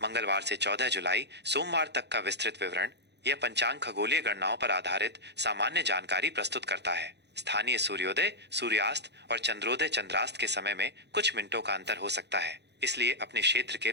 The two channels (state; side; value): late; left; 0.50 ms